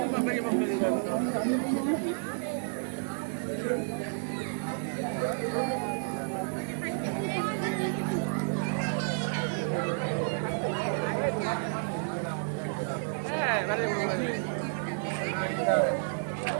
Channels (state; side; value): silent; left; 57 dB below the other